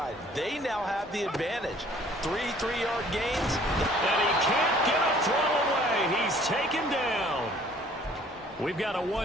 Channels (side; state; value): both; normal; correlation 0.56